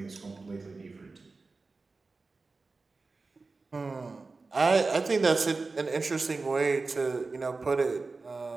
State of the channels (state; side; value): quieter; left; 3.9 dB